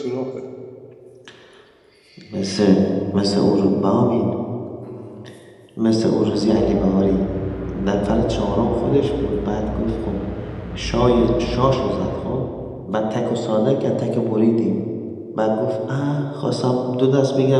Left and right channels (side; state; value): both; identical; correlation 1.00